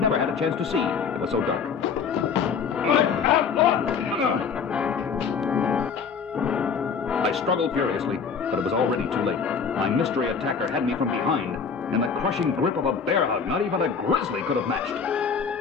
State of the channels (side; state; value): right; quieter; 6.1 dB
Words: had a chance to see. It was so dark. I struggled furiously, but it was already too late. My mystery attacker had me from behind, in the crushing grip of a bear hug not even a grizzly could have matched.